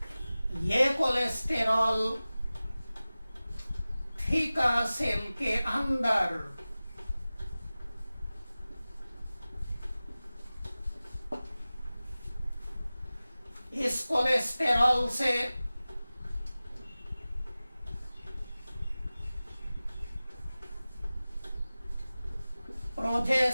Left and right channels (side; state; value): both; inverted; correlation -0.97